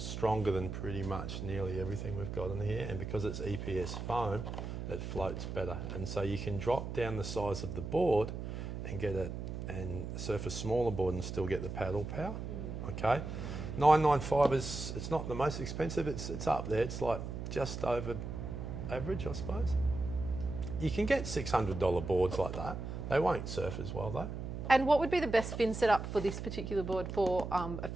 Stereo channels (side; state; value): right; noise; hum, 6 dB below the sound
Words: than pretty much nearly everything we've got in here, and because it's EPS foam, it floats better. And so you can drop down the size of the board and get it and surf a smaller board and still get the paddle power. Okay, 995 it's not the most expensive. It's up there. It's like just over average, I suppose. You can get $600 boards like that. They won't surf as well though. And what would be the best fin setup for this particular board for a